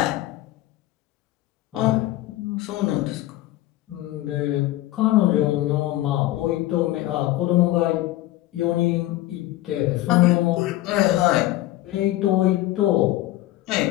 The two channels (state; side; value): quieter; right; 16.0 dB